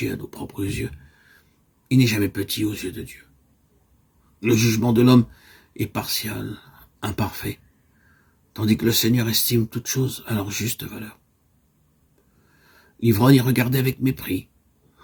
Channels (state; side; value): identical; both; correlation 1.00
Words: à nos propres yeux, il n'est jamais petit aux yeux de Dieu. Le jugement de l'homme est partial, imparfait, tandis que le Seigneur estime toutes choses à leur juste valeur. L'ivrogne y regardait avec mépris.